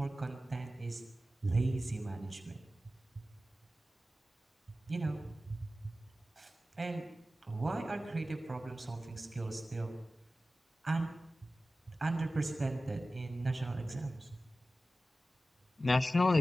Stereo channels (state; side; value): normal; both; correlation 0.95